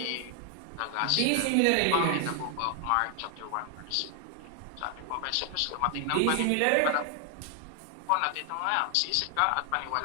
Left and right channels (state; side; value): different; both; correlation 0.00